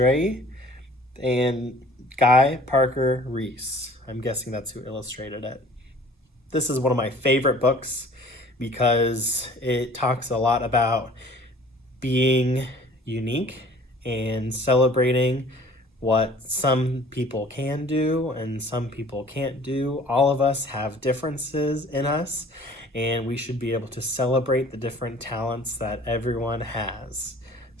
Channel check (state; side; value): normal; both; correlation 0.50